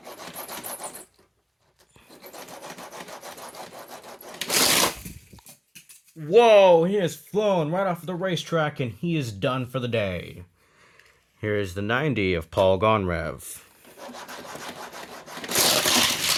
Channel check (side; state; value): both; identical; correlation 1.00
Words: Whoa, he has flown right off the racetrack and he is done for the day. Here is the 90 of Paul Gonrev.